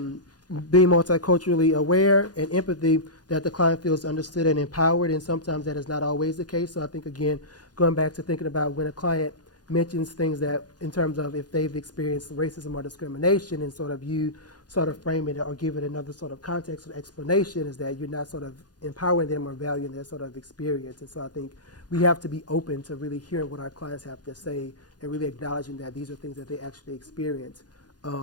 multiculturally aware and empathy, that the client feels understood and empowered, and sometimes that is not always the case. So I think, again, going back to thinking about when a client mentions things that in terms of if they've experienced racism or discrimination, and sort of you sort of frame it or give it another sort of context or explanation, is that you're not sort of empowering them or valuing their sort of experience. And so I think we have to be open to really hearing what our clients have to say and really acknowledging that these are things that they actually experience.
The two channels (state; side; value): late; right; 0.69 ms